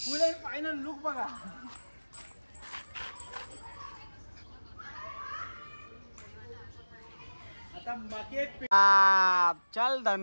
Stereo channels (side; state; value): both; inverted; correlation -1.00